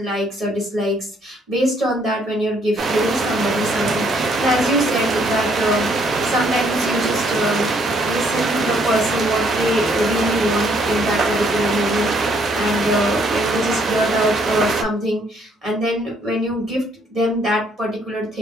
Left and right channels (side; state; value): both; normal; correlation 0.67